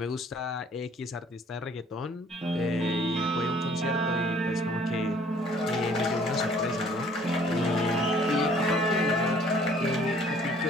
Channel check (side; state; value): both; normal; correlation 0.57